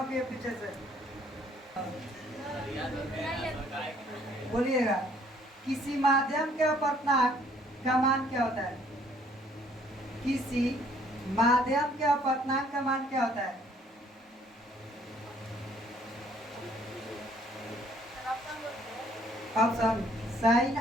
पीछे से बोलिएगा। किसी माध्यम के अपवर्तनांक का मान क्या होता है? किसी माध्यम के अपवर्तनांक का मान क्या होता है? ऑप्शन साइन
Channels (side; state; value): both; normal; correlation 0.62